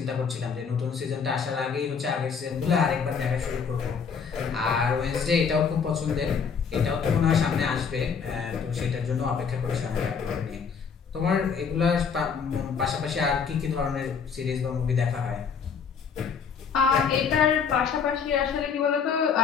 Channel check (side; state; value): right; quieter; 6.2 dB